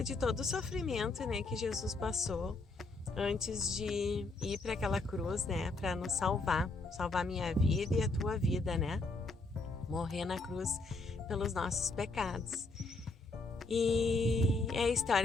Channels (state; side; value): quieter; right; 3.4 dB